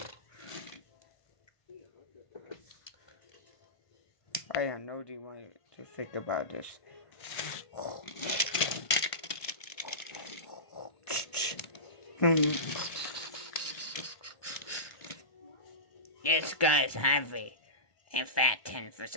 I have no idea what to think about this. This guy's heavy and fat for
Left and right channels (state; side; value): late; right; 1.5 ms